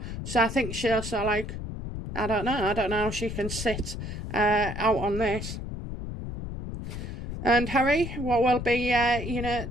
So I think she'll I don't know how she can sit out on this. And Harry, what will be,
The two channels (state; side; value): noise; left; rumble, 7 dB below the sound